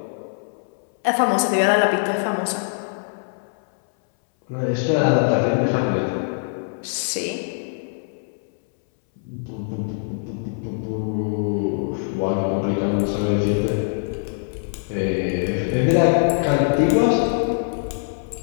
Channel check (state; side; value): silent; right; 62 dB below the other